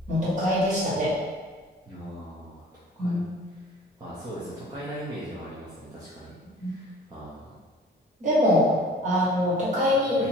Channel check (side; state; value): both; normal; correlation 0.47